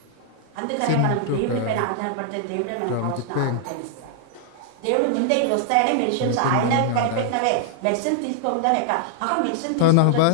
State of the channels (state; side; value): different; both; correlation -0.01